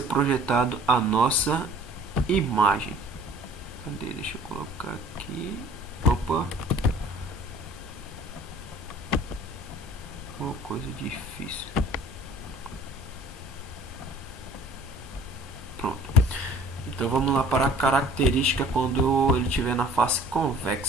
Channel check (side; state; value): both; normal; correlation 0.51